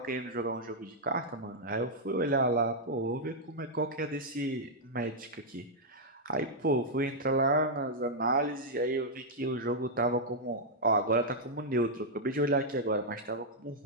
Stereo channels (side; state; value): both; normal; correlation -0.05